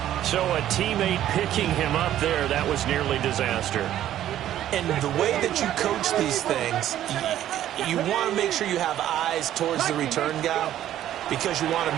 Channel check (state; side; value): quieter; left; 12.1 dB